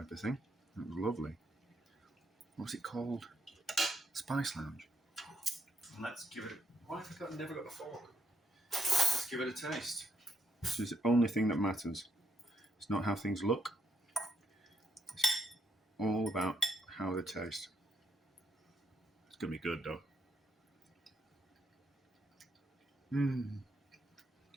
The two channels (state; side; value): normal; both; correlation 0.77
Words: of thing. It was lovely. What was it called? Spice Lounge. Let's give it. Why have I never got a fork? Let's give it a taste. This is the only thing that matters. It's not how things look. It's all about how they taste. It's gonna be good though.